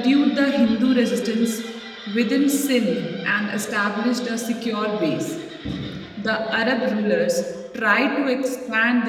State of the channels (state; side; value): identical; both; correlation 1.00